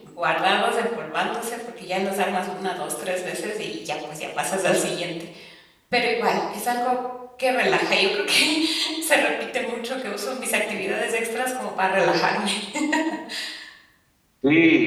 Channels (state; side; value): identical; both; correlation 1.00